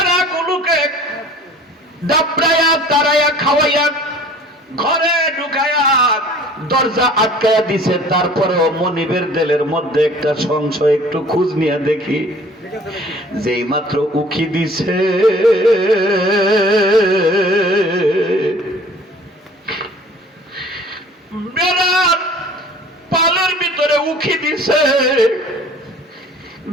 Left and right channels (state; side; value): normal; both; correlation 0.49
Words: ডাবড়াইয়া তারাইয়া খাওয়াইয়া ঘরে ঢুকাইয়া দরজা আটকাইয়া দিছে। তারপরেও মনিবের দিলের মধ্যে একটা সংশয়, একটু খোঁজ নিয়ে দেখি। যেই মাত্র উকি দিছে, বেড়ার পালের ভিতরে উকি দিছে,